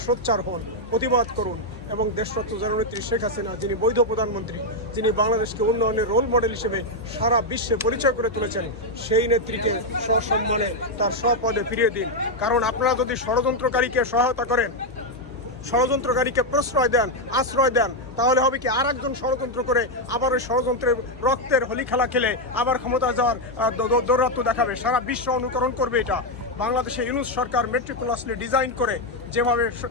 সোচ্চার হন, প্রতিবাদ করুন এবং দেশরত্ন জননেত্রী শেখ হাসিনা, যিনি বৈধ প্রধানমন্ত্রী, যিনি বাংলাদেশকে উন্নয়নের রোল মডেল হিসেবে সারা বিশ্বে পরিচয় করে তুলেছেন, সেই নেত্রীকে সসম্মানে তার স্বপদে ফিরিয়ে দিন। কারণ আপনারা যদি ষড়যন্ত্রকারীকে সহায়তা করেন, ষড়যন্ত্রকারীকে প্রশ্রয় দেন, আশ্রয় দেন, তাহলে হবে কি আর একজন ষড়যন্ত্র করে আবার ওই ষড়যন্ত্রের রক্তের হোলি খেলা খেলে আবার ক্ষমতা যাওয়ার দৌরাত্ম্য দেখাবে। সারা বিশ্ব অনুকরণ করবে এটা। বাংলাদেশে ইউনূস সরকার মেট্রিকুলাসলি ডিজাইন করে যেভাবে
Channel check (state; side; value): normal; both; correlation 0.02